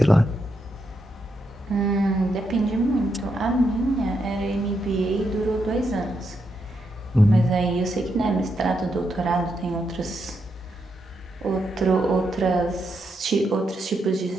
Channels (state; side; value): normal; both; correlation 0.82